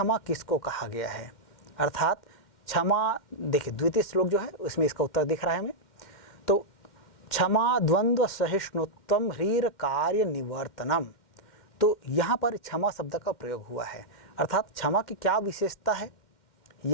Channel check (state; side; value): late; right; 2.1 ms